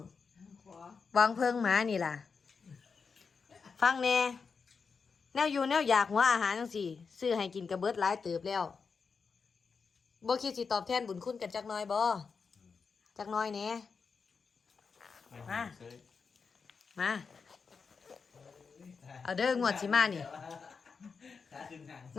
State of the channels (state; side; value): quieter; right; 5.3 dB